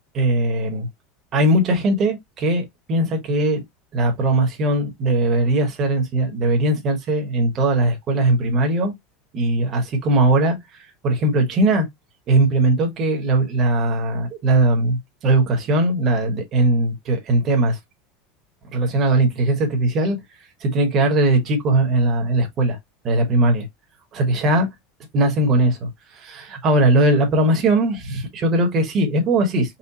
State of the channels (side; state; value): both; normal; correlation -0.17